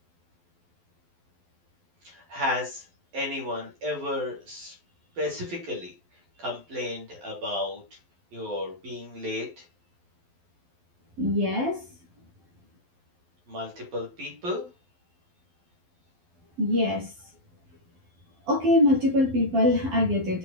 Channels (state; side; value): late; left; 12 ms